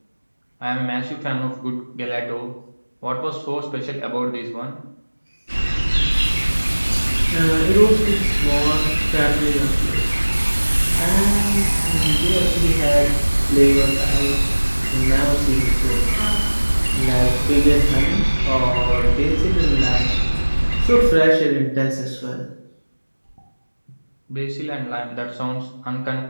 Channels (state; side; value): inverted; both; correlation -1.00